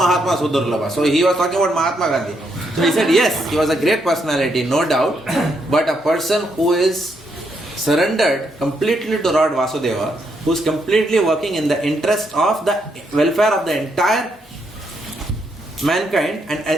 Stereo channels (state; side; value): normal; both; correlation 0.77